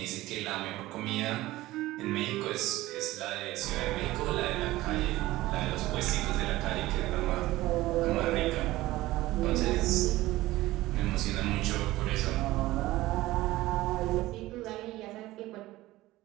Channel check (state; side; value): quieter; left; 17.4 dB